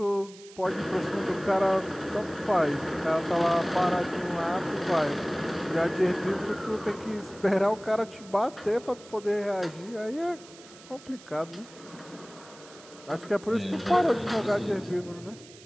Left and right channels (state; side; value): noise; right; hiss, 21 dB below the sound